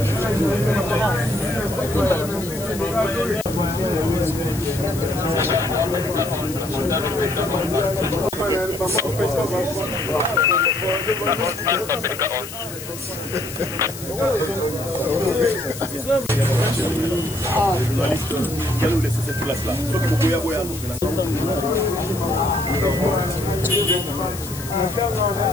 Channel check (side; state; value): left; noise; hiss, 12 dB below the sound